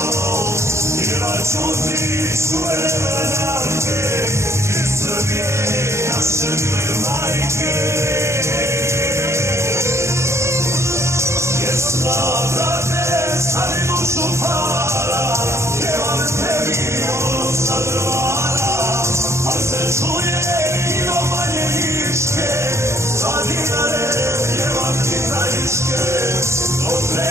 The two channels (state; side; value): late; left; 0.14 ms